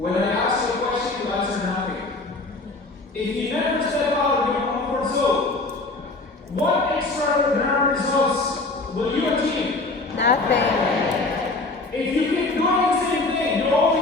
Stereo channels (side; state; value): right; quieter; 3.3 dB